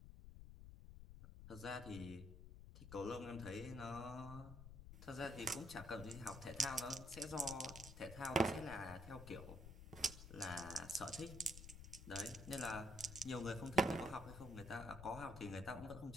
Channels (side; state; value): left; noise; rumble, 12 dB below the sound